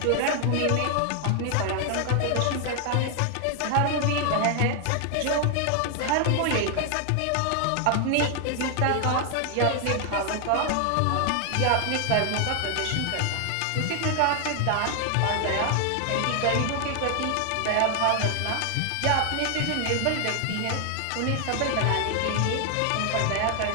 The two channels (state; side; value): different; both; correlation 0.00